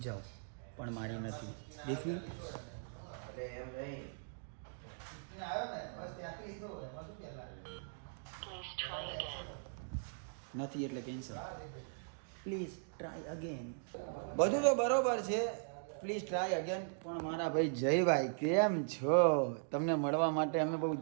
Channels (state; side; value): silent; left; digital silence